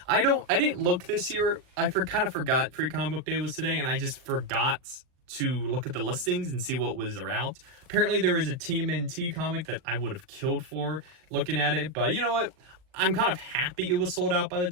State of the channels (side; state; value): left; late; 39 ms